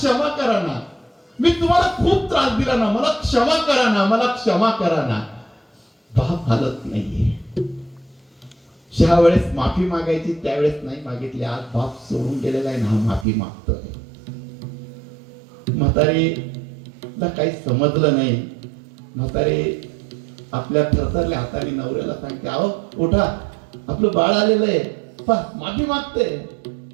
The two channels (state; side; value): drops out; left; at 13.2 s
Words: करा ना, मी तुम्हाला खूप त्रास दिला ना, मला क्षमा करा ना, मला क्षमा करा ना. बाप हालत नाहीये. ज्या वेळेस माफी मागायची त्यावेळेस नाही मागितली. आज बाप सोडून गेलेला आहे ना, माफी मागतोय. म्हातारीला काही समजलं नाही. म्हातारी आपल्या थरथरल्या हाताने नवऱ्याला सांगते, अहो उठा, आपलं बाळ आलेलं आहे, माफी मागते.